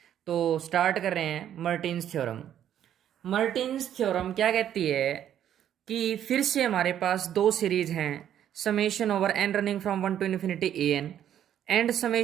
तो स्टार्ट कर रहे हैं मर्टिन्स थ्योरम। मर्टिन्स थ्योरम क्या कहती है कि फिर से हमारे पास दो सीरीज हैं, summation over N running from one to infinity A N and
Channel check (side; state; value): left; quieter; 10.4 dB